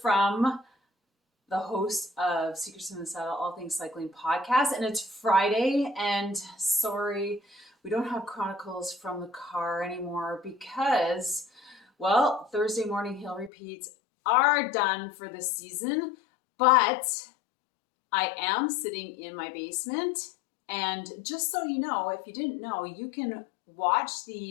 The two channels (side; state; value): right; drops out; at 13.5 s